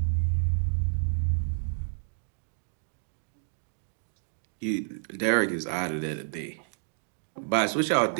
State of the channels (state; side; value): silent; left; digital silence